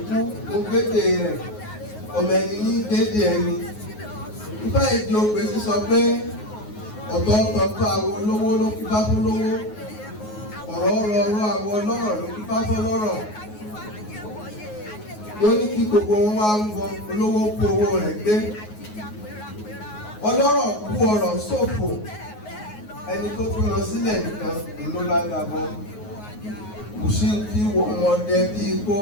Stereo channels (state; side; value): late; right; 9.5 ms